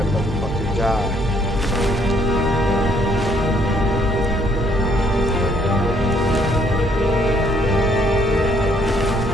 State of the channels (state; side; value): normal; both; correlation 0.65